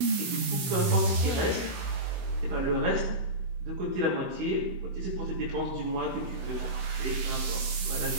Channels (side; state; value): left; late; 16 ms